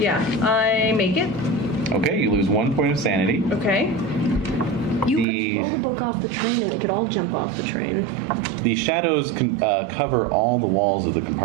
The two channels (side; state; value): left; drops out; at 5.2 s